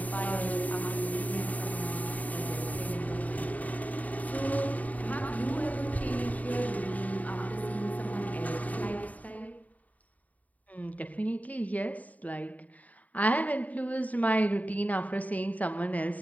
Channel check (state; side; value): late; right; 0.073 ms